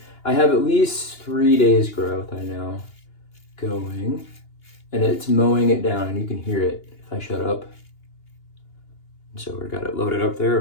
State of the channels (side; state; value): right; late; 2.8 ms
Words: I have at least 3 days growth I know going, and it's mowing it down, and you can hear it if I shut up. So we've got it loaded up there,